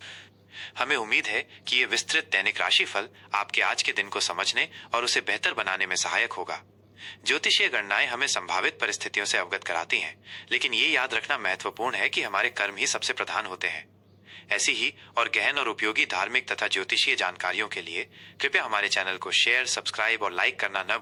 हमें उम्मीद है कि ये विस्तृत दैनिक राशिफल आपके आज के दिन को समझने और उसे बेहतर बनाने में सहायक होगा। ज्योतिषीय गणनाएं हमें संभावित परिस्थितियों से अवगत कराती हैं, लेकिन ये याद रखना महत्वपूर्ण है कि हमारे कर्म ही सबसे प्रधान होते हैं। ऐसी ही और गहन और उपयोगी धार्मिक तथा ज्योतिषीय जानकारियों के लिए कृपया हमारे चैनल को शेयर, सब्सक्राइब और लाइक करना न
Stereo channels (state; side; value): identical; both; correlation 1.00